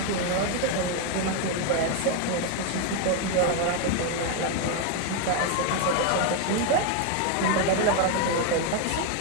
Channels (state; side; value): different; both; correlation 0.01